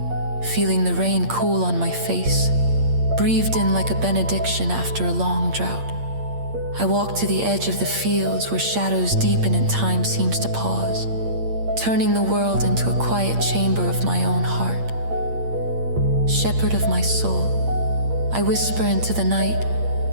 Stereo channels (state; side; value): late; left; 8.7 ms